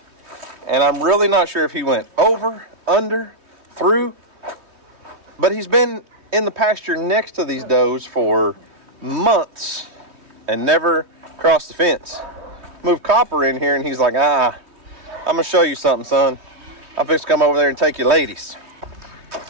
And I'm really not sure if he went over, under, through. But he's been in the pasture next to these does for months and never crossed the fence. Moved Copper in here and he's like, I'm going to show you something, son. I'm fixing to come over there and take you ladies.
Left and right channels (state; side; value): late; left; 3.2 ms